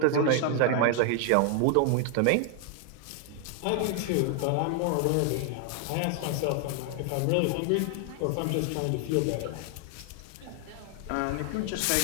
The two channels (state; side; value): different; both; correlation 0.00